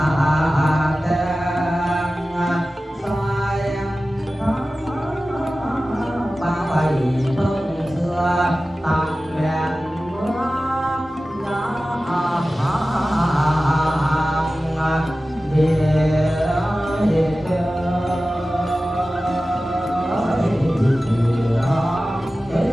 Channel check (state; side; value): normal; both; correlation 0.95